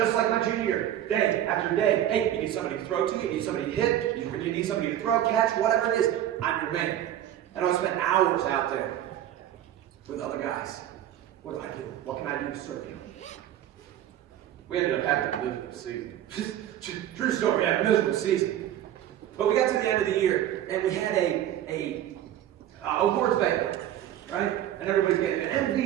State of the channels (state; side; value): quieter; left; 11.7 dB